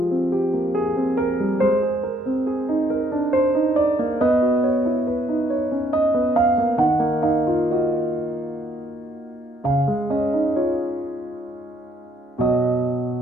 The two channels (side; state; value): both; normal; correlation 0.69